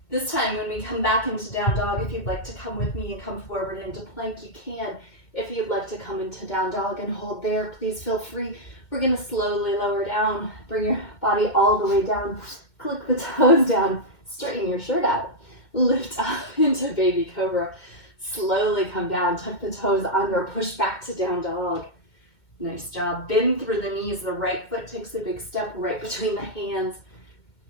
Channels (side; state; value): right; late; 2.1 ms